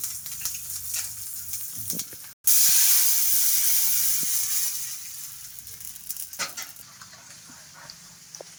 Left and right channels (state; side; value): identical; both; correlation 1.00